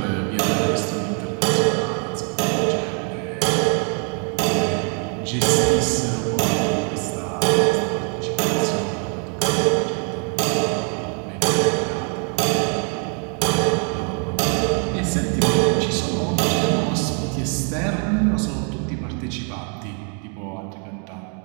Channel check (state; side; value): quieter; left; 39.6 dB